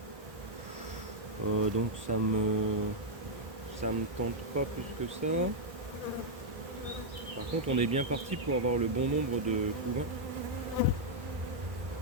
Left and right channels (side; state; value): left; late; 1.4 ms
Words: Donc ça me tente pas plus que ça. Par contre on est bien parti pour avoir le bon nombre de couvains.